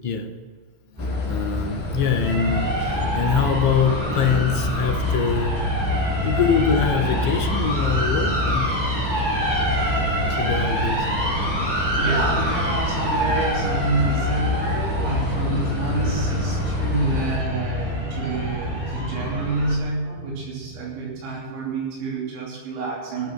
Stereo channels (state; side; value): late; left; 15 ms